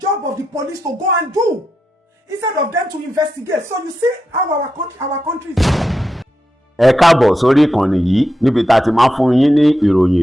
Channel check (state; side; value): normal; both; correlation 0.87